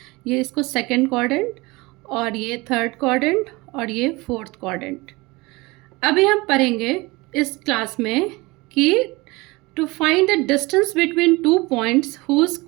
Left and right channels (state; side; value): quieter; left; 23.2 dB